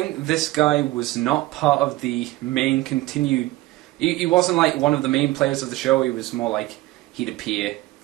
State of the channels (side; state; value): left; quieter; 18.3 dB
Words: this guy was not part of the main continued... He wasn't like one of the main players of the show. He was more like he'd appear